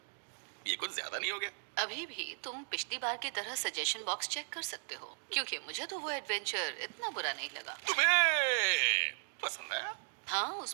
ये कुछ ज्यादा नहीं हो गया? अभी भी तुम पिछली बार की तरह सजेशन बॉक्स चेक कर सकते हो, क्योंकि मुझे तो वो एडवेंचर इतना बुरा नहीं लगा। तुम्हें पसंद आया? हाँ,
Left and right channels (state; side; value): silent; left; 53 dB below the other